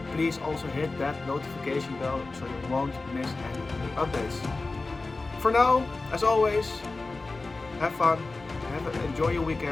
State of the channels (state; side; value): quieter; right; 3.5 dB